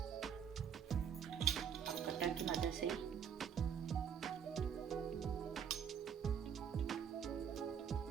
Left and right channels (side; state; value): left; quieter; 7.8 dB